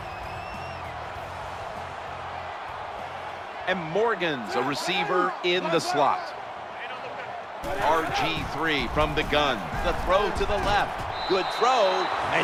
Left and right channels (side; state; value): both; identical; correlation 1.00